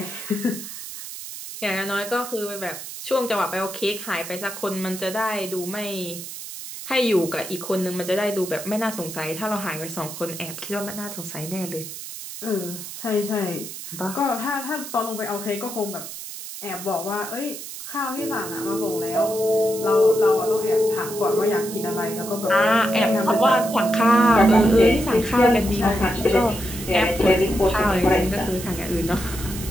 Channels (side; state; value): right; noise; hiss, 10 dB below the sound